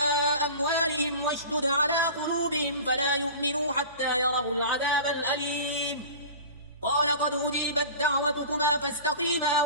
أموالهم واشدد على قلوبهم فلا يؤمنوا حتى يروا العذاب الأليم. قال قد أجيبت دعوتكما فاستقيما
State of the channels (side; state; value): both; inverted; correlation -0.37